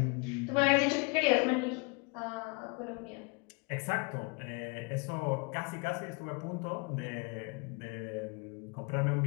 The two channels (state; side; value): quieter; right; 30.9 dB